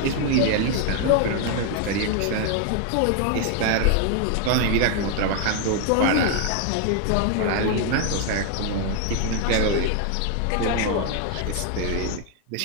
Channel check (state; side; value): different; both; correlation 0.00